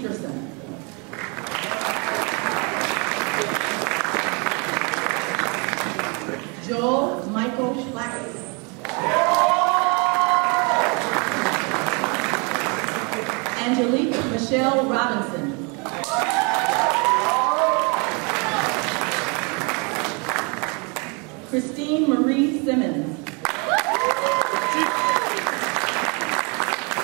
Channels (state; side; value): quieter; left; 32.6 dB